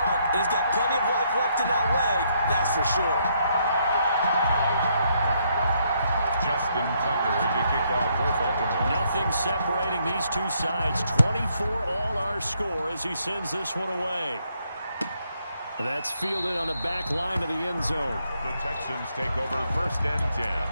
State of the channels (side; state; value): both; inverted; correlation -0.73